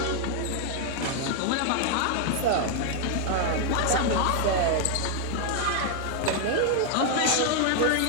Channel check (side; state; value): both; different; correlation 0.00